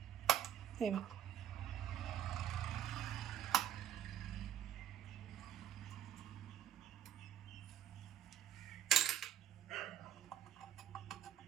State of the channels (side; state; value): left; quieter; 10.4 dB